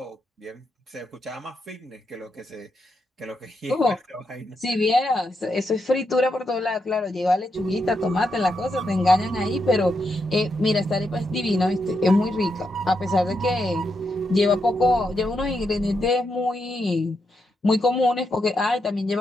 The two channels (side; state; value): both; normal; correlation 0.83